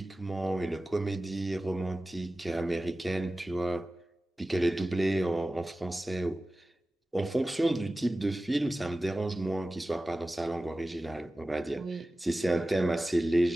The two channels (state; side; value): normal; both; correlation 0.96